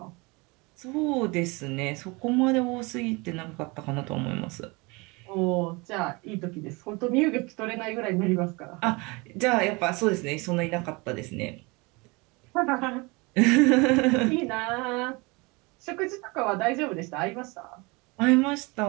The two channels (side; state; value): left; quieter; 26.5 dB